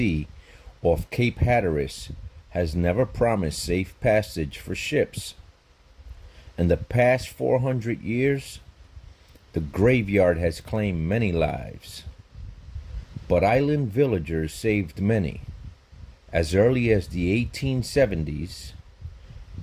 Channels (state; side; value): identical; both; correlation 1.00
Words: off Cape Hatteras, has never promised safe passage for ships. In the past 400 years, the graveyard has claimed many lives. But island villagers saved many. As early as the 1870s,